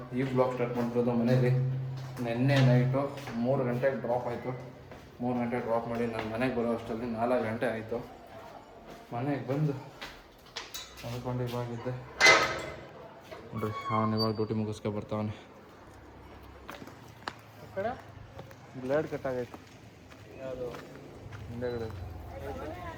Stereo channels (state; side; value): identical; both; correlation 1.00